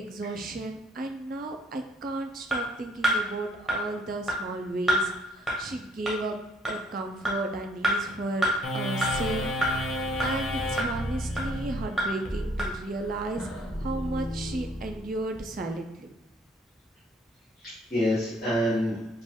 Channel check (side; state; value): both; normal; correlation 0.63